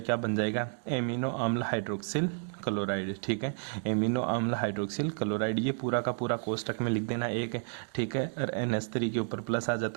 बन जाएगा, एमिनो अम्ल हाइड्रोक्सिल क्लोराइड। ठीक है, एमिनो अम्ल हाइड्रोक्सिल क्लोराइड। ये पूरा का पूरा कोष्टक में लिख देना एक। ठीक है, और NH3 के ऊपर प्लस आ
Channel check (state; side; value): silent; left; 57 dB below the other